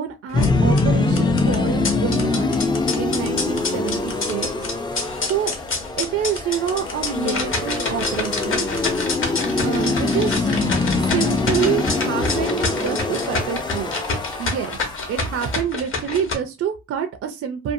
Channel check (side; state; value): both; normal; correlation 0.47